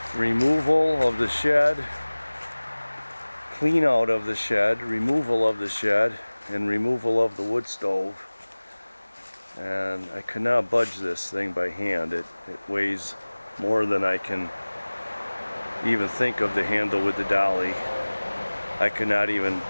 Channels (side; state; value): both; inverted; correlation -1.00